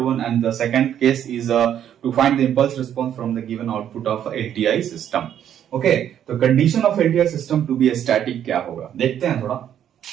one and the second case is to find the impulse response from the given output of LTI system. Okay, तो condition of LTI system to be static क्या होगा, देखते हैं। थोड़ा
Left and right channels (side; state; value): left; quieter; 10.0 dB